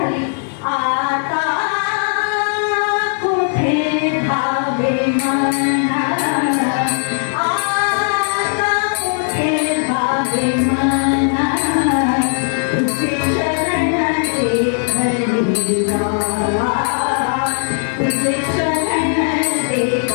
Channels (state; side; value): silent; right; 63 dB below the other